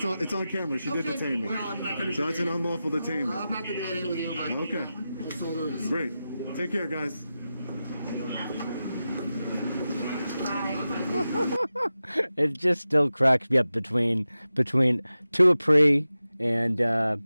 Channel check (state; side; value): inverted; both; correlation -0.93